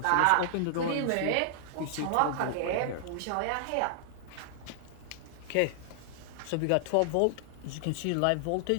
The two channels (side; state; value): both; different; correlation -0.01